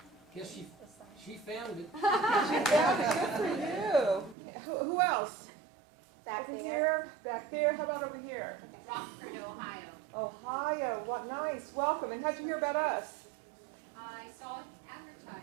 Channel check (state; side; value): drops out; left; at 4.4 s